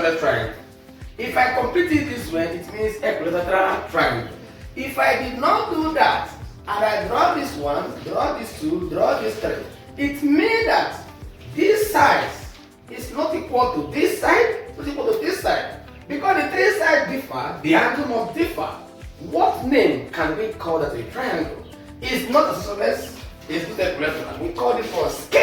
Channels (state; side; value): identical; both; correlation 1.00